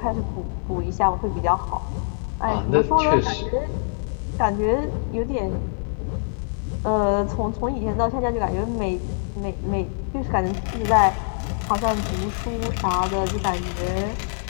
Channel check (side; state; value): right; silent; digital silence